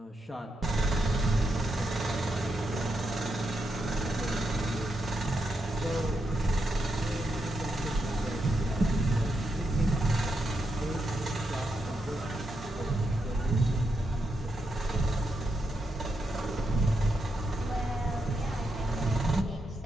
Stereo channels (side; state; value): both; normal; correlation 0.83